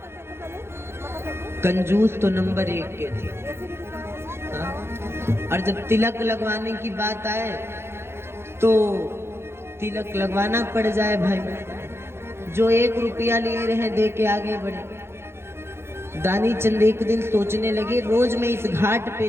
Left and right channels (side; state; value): left; late; 0.12 ms